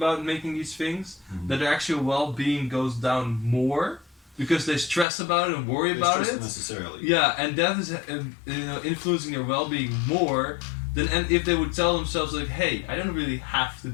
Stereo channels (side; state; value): right; drops out; at 5.1 s